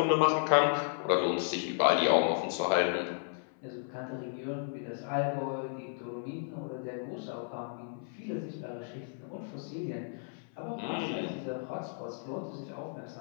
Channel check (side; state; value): right; silent; 55 dB below the other